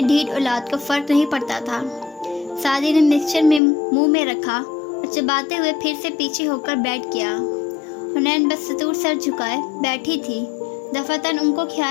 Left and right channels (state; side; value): drops out; right; at 3.6 s